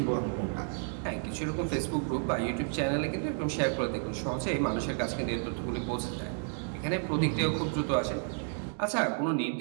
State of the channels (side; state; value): left; silent; 57 dB below the other